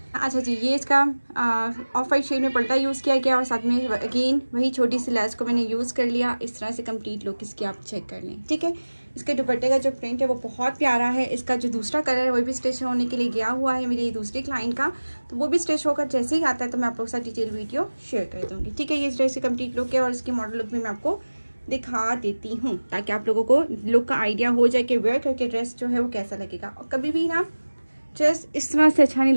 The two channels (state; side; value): inverted; both; correlation -1.00